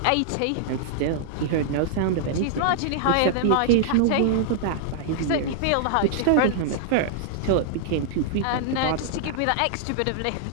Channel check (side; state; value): both; different; correlation -0.01